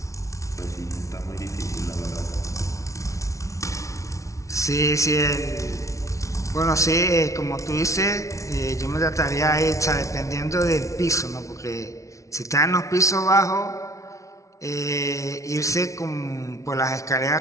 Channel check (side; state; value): right; late; 0.15 ms